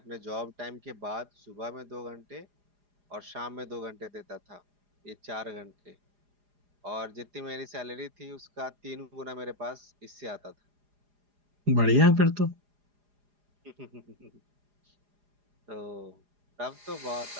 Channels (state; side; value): late; left; 4.9 ms